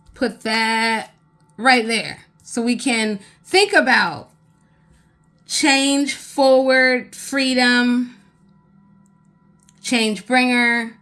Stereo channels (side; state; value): both; identical; correlation 1.00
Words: put that right there so we can think about change forward, freedom, change bringer,